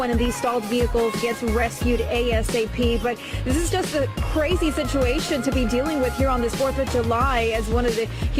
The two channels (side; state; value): both; identical; correlation 1.00